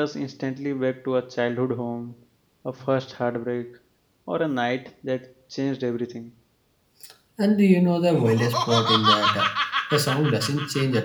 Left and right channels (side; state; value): both; identical; correlation 1.00